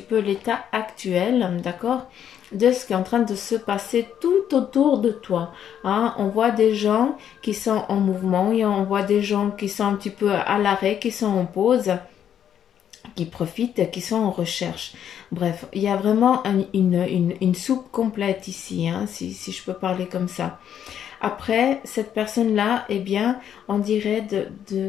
peu l'état actuel, d'accord? De ce qui est en train de se passer tout autour de toi. Hein. On voit des gens qui sont en mouvement et on voit des gens qui sont un petit peu à l'arrêt, qui sont en pause, qui profitent, qui sont en recherche. Bref, il y a vraiment une soupe complète ici, hein, si je peux parler comme ça. Après, cette personne-là, eh bien, on dirait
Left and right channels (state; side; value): quieter; right; 9.4 dB